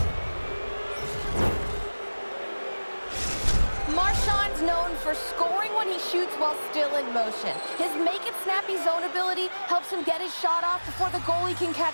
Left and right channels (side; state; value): both; inverted; correlation -1.00